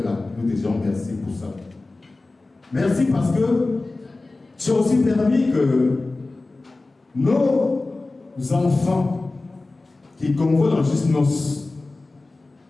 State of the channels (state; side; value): quieter; right; 3.2 dB